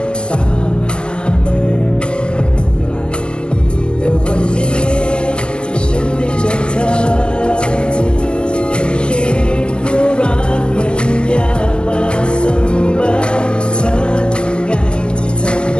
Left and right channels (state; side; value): late; right; 0.053 ms